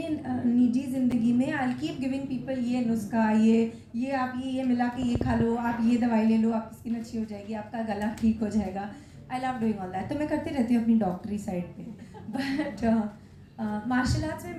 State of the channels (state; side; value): identical; both; correlation 1.00